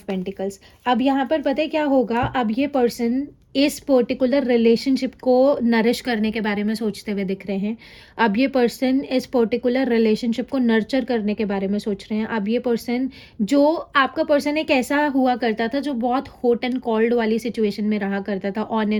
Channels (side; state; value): both; identical; correlation 1.00